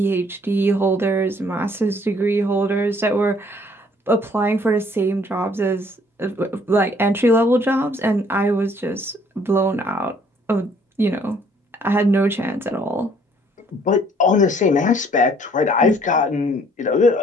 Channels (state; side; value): normal; both; correlation 0.61